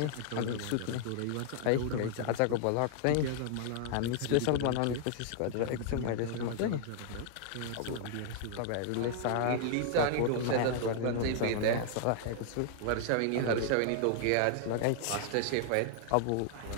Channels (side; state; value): both; different; correlation -0.01